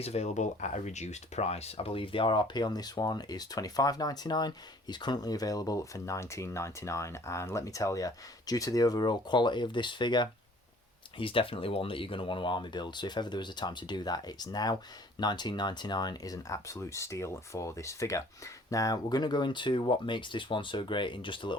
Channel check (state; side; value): normal; both; correlation 0.54